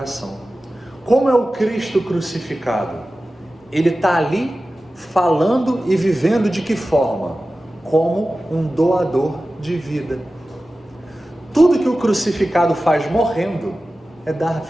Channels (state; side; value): normal; both; correlation 0.95